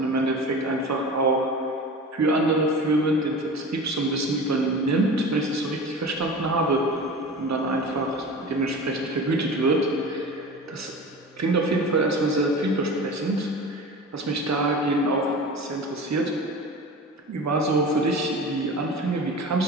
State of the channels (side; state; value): both; normal; correlation 0.33